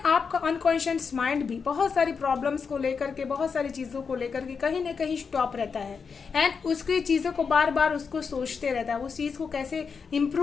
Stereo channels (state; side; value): quieter; right; 5.7 dB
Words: अनकॉन्शियस माइंड भी बहुत सारी प्रॉब्लम्स को लेकर के, बहुत सारी चीज़ों को लेकर के कहीं ना कहीं स्टॉप रहता है। एंड उसकी चीज़ों को बार बार उसको सोचते रहता है, उस चीज़ को कैसे